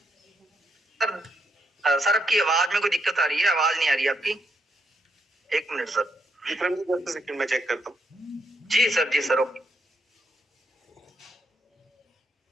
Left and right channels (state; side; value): normal; both; correlation 0.79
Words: सर आपकी आवाज में कोई दिक्कत आ रही है? आवाज नहीं आ रही आपकी। एक मिनट सर, सेकंड में चेक करता हूँ। जी सर ओके।